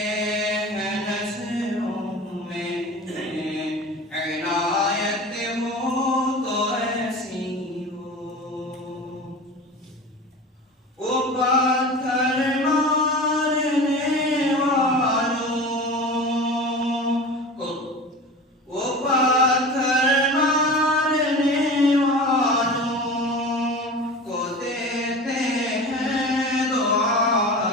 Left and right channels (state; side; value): normal; both; correlation 0.34